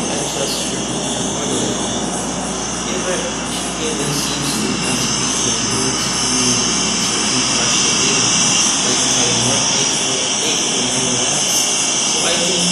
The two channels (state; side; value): identical; both; correlation 1.00